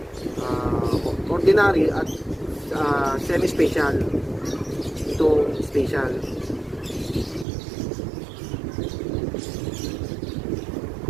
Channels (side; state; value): left; drops out; at 7.5 s